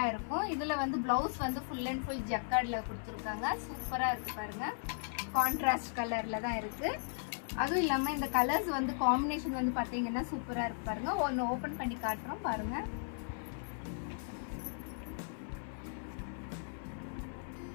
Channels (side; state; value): right; silent; 53 dB below the other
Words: இருக்கும். இதுல வந்து பிளவுஸ் வந்து ஃபுல் அண்ட் ஃபுல் ஜக்கார்ட்ல கொடுத்துருக்காங்க. சூப்பரா இருக்கு பாருங்க. கான்ட்ராஸ்ட் கலர்ல தான் இருக்கு. அதுவும் இல்லாம இந்த கலர்ஸ் வந்து காம்பினேஷன் வந்து பாத்தீங்கன்னா சூப்பரா இருக்கு பாருங்க. ஒன்னு ஓபன் பண்ணி காட்டுறோம் பாருங்க.